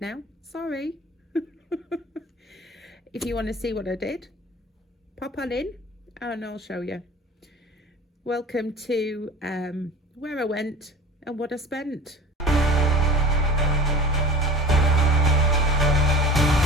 Sorry. If you want to see what I did, pop on in and I'll show you. Welcome to where I went and what I spent.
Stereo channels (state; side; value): normal; both; correlation 0.39